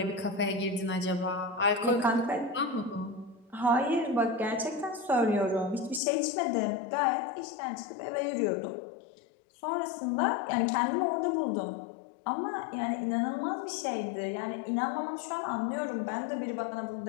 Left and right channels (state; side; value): drops out; right; at 6.0 s